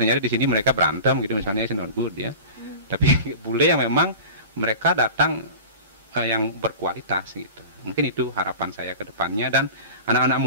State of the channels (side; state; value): both; inverted; correlation -0.35